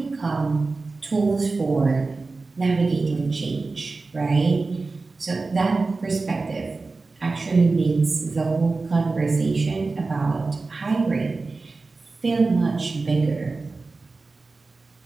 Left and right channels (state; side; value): quieter; left; 3.8 dB